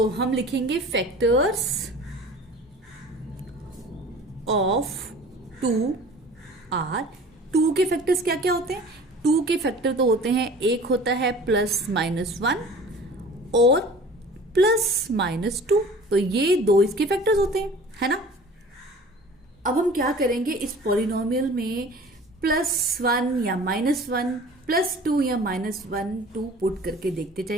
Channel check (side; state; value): both; normal; correlation 0.44